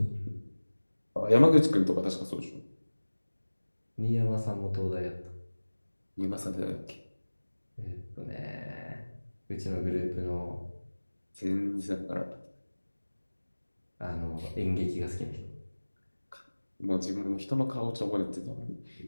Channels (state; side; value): inverted; both; correlation -1.00